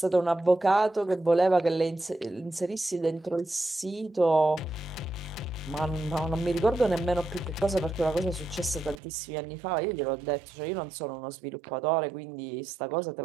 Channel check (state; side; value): drops out; left; at 9.0 s